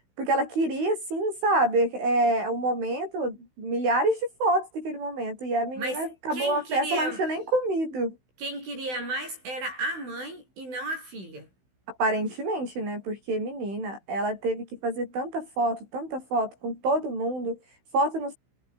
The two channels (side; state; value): left; late; 16 ms